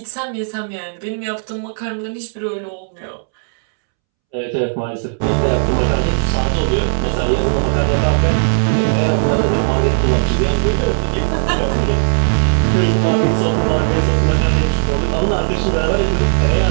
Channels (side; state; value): left; silent; 69 dB below the other